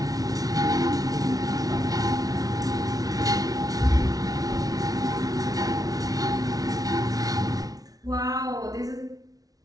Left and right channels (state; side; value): late; left; 0.18 ms